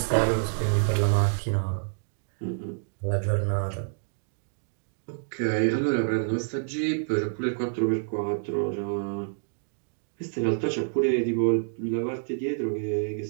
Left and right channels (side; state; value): left; silent; digital silence